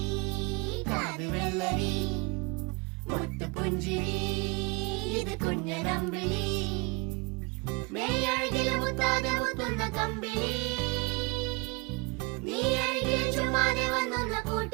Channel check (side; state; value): left; quieter; 29.1 dB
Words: കാത് വെള്ളരി മുത്തു പുഞ്ചിരി ഇത് കുഞ്ഞനമ്പിളി മേയഴകില് മുത്താതെ മുത്തുന്ന കമ്പിളി നീ അഴകിൽ ചുമ്മാതെ വന്നൊന്ന